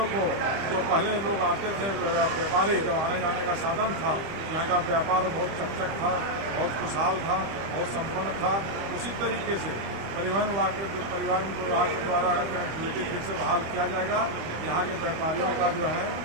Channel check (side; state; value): left; late; 25 ms